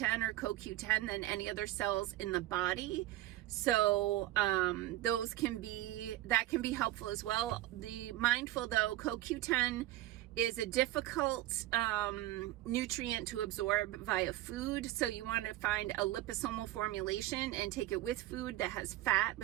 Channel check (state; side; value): quieter; left; 15.3 dB